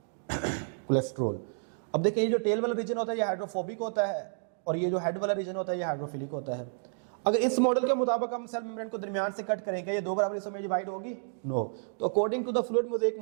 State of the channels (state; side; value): silent; left; digital silence